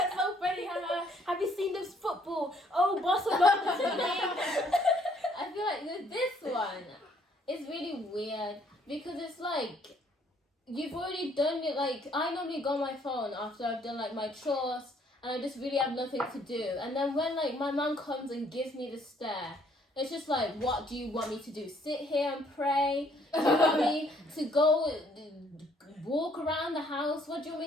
so funny, have you seen this football? Oh, Barcelona's winning. I feel like with this one, it's really weird, because it's like, you've already done it. Like, I normally go on my phone after I've done like my chores and I just really have nothing to do. And then when like my mum comes and gives me the stare, it's just like, what do you want me to do? Sit here and pray? Do you want me to go walk around the house? What do you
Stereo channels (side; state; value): both; normal; correlation 0.65